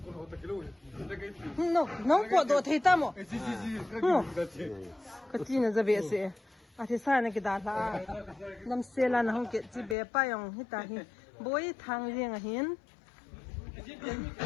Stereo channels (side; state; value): right; drops out; at 10.0 s